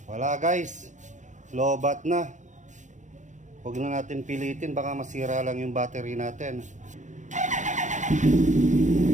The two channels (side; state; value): left; late; 0.35 ms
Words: Wala guys, lobat na. Huwag na natin pilitin, baka masira lang yung battery natin.